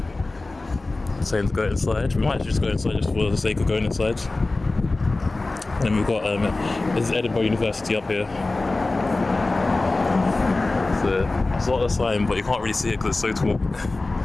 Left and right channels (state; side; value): quieter; right; 3.2 dB